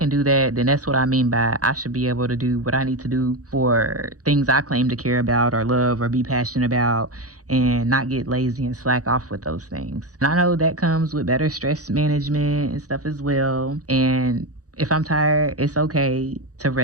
do that, then that's what I mean by I should be able to do what I need to do for things I claim to care about or love or be passionate about, and not get lazy and slack off with those things. And I know that comes with better stress management and stuff as well. And if I'm tired, it's okay to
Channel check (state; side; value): late; left; 0.67 ms